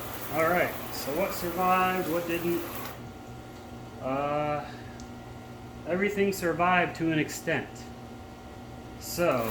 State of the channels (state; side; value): identical; both; correlation 1.00